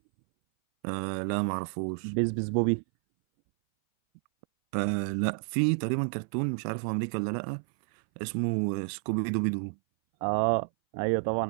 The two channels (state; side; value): silent; left; 58 dB below the other